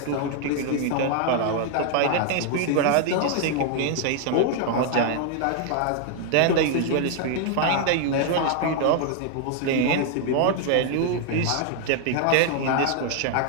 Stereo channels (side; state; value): both; different; correlation 0.00